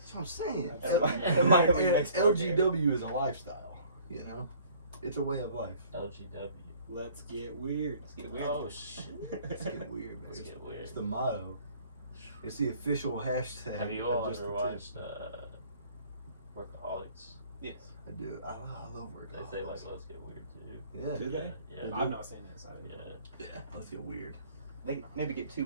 what I'm saying. That might be next LGW is a lifestyle, you know? It's a way of life. LGW. Let's get weird. Let's get weird. Oh shit. Let's get weird, man. Let's get weird. It's the motto. It's the official hashtag. Have you of all Just ever the Tip. watched Workaholics? Yes. I do. I love work. They say like let's get weird too. Yeah. Do they? Yeah. I've not seen it. So Yeah. Yeah. Let's get weird. They maybe get too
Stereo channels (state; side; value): inverted; both; correlation -0.53